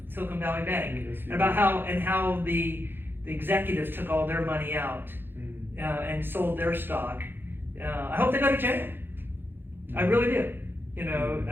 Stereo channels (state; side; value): late; left; 0.10 ms